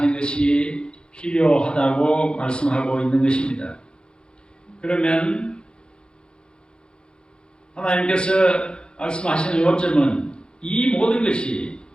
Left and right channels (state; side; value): late; right; 0.051 ms